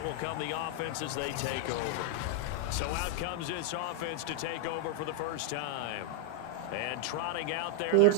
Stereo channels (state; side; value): different; both; correlation 0.00